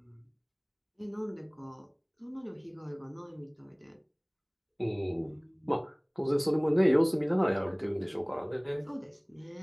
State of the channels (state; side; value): identical; both; correlation 1.00